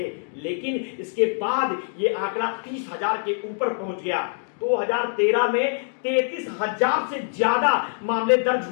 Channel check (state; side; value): silent; right; digital silence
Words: लेकिन इसके बाद ये आंकड़ा 30,000 के ऊपर पहुंच गया। 2013 में 33,000 से ज्यादा मामले दर्ज